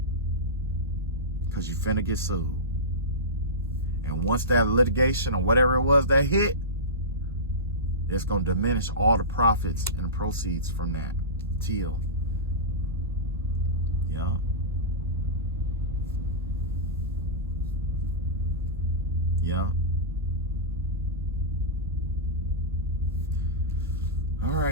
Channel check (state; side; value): normal; both; correlation -0.18